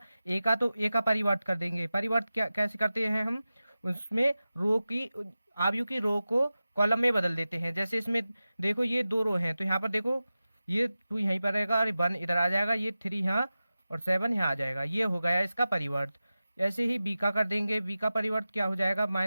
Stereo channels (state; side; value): inverted; both; correlation -0.95